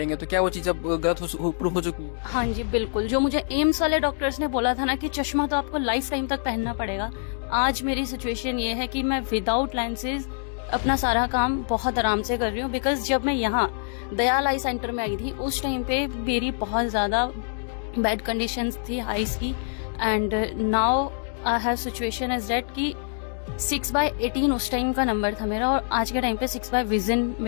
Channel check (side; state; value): right; silent; digital silence